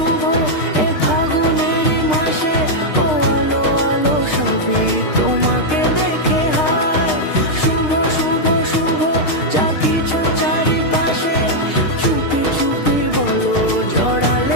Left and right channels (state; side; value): late; right; 6.5 ms